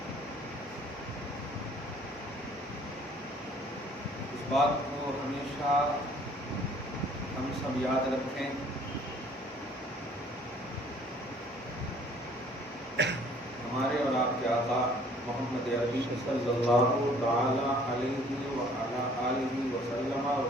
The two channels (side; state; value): both; normal; correlation 0.56